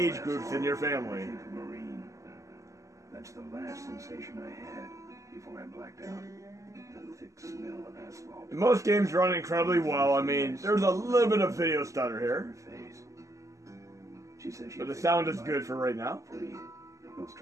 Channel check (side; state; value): left; late; 0.16 ms